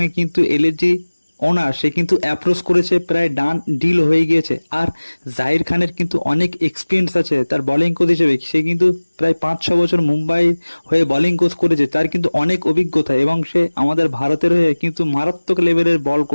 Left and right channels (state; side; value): inverted; both; correlation -1.00